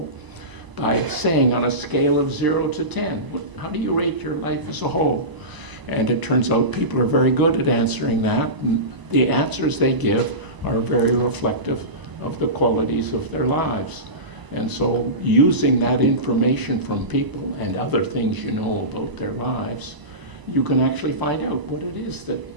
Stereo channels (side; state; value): left; late; 1.0 ms